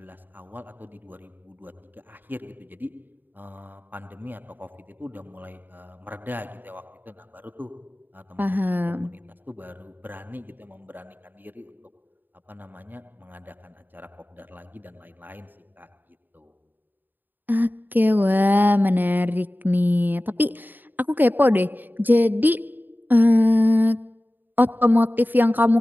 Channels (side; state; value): left; late; 0.090 ms